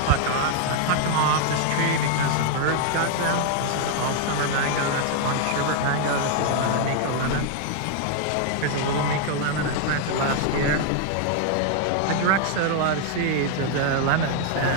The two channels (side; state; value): both; different; correlation 0.00